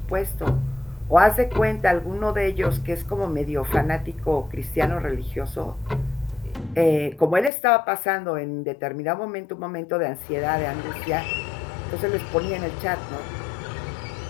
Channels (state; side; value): drops out; right; at 7.5 s